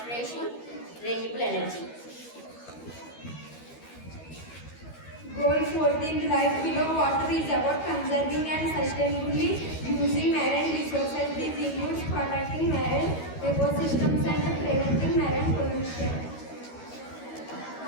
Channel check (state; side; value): late; right; 13 ms